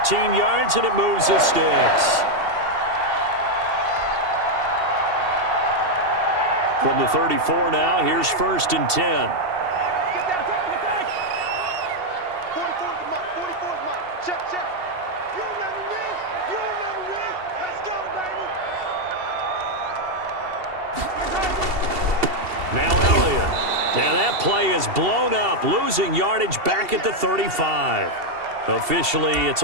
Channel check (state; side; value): late; left; 2.7 ms